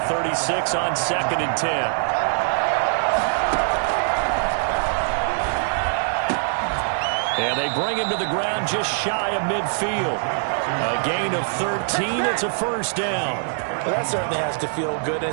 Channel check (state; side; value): silent; left; digital silence